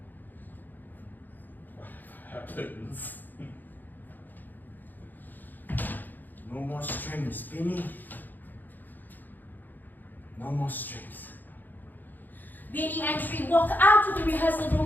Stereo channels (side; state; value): right; late; 0.087 ms